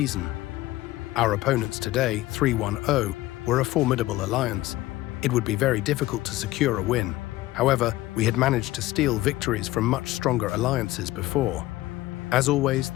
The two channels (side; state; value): right; quieter; 17.1 dB